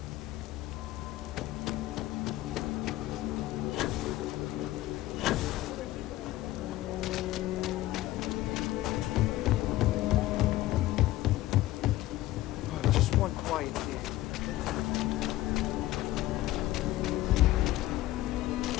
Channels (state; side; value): quieter; right; 16.2 dB